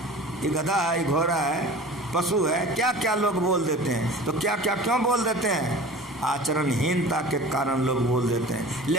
ये गधा है, ये घोड़ा है, पशु है। क्या क्या लोग बोल देते हैं। तो क्या क्या क्यों बोल देते हैं? आचरणहीनता के कारण लोग बोल देते हैं।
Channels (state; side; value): normal; both; correlation 0.40